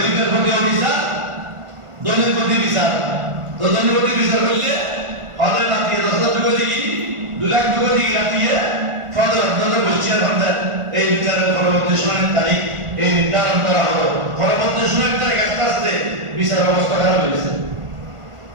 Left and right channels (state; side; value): late; left; 1.4 ms